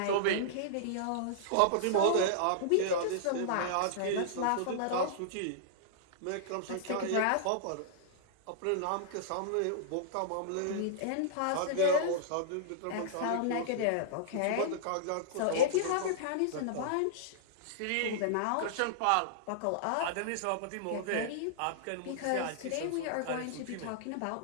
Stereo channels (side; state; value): both; different; correlation -0.02